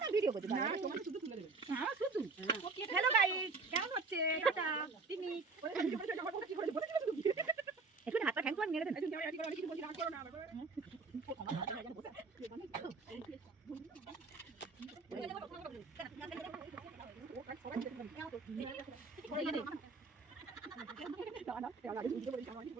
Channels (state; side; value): quieter; left; 4.2 dB